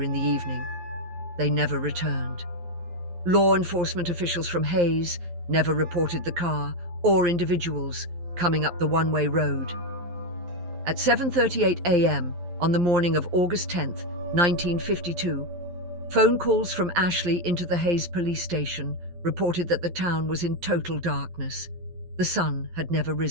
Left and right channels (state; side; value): late; left; 11 ms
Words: in the evening. They never returned. Law enforcement officials from Hayes never reported the car or individuals coming up the one-way road. At 7:38 a.m. on the morning of August 10th, 1952, phone calls from Ashley into the Hayes police station reported that the town was in total darkness. The sun had never